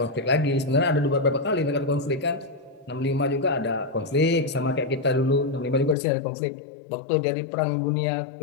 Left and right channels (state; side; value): drops out; right; at 6.0 s